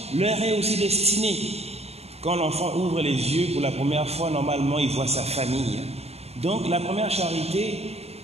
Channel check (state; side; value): late; left; 0.30 ms